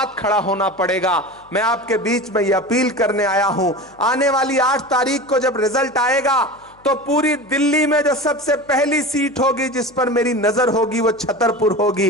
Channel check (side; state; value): left; noise; hum, 30 dB below the sound